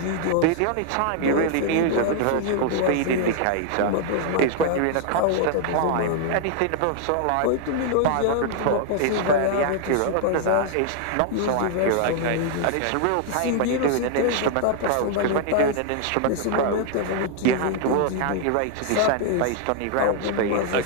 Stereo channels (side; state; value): both; different; correlation 0.00